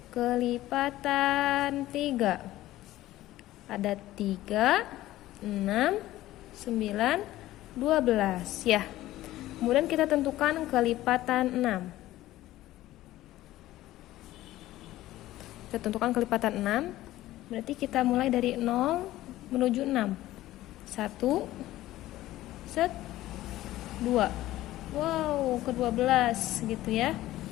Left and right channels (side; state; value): right; quieter; 15.5 dB